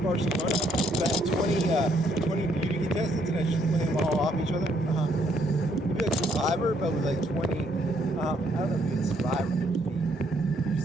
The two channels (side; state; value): both; normal; correlation 0.70